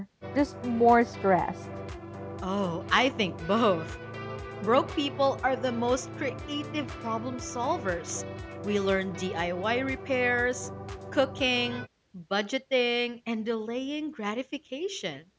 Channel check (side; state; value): both; identical; correlation 1.00